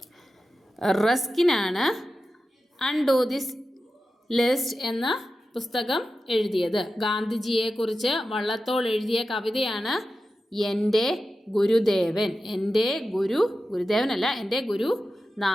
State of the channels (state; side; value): normal; both; correlation 0.92